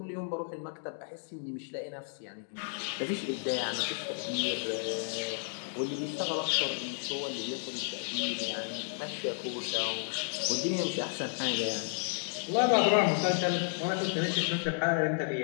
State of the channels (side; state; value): right; silent; digital silence